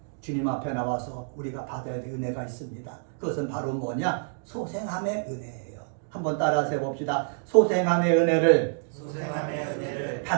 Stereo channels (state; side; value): silent; left; digital silence